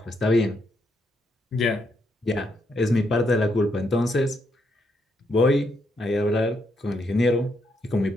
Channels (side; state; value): both; normal; correlation 0.77